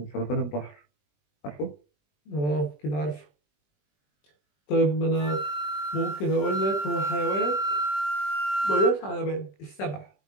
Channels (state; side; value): late; right; 20 ms